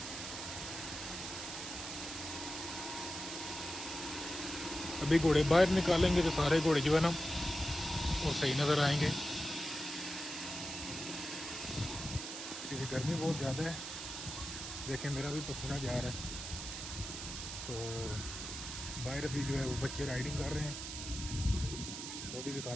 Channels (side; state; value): right; noise; hiss, 7 dB below the sound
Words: अभी घोड़े बाहर निकालेंगे तो सारे घोड़े जो है ना वो सही नज़र आएंगे, क्योंकि गर्मी बहुत ज़्यादा है। देखें मेरा भी पसीना जा रहा है। तो बाहर अभी जो है वो बच्चे राइडिंग कर रहे हैं, वो भी